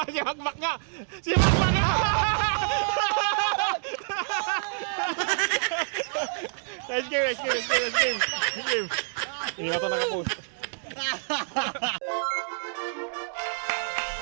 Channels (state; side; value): silent; left; digital silence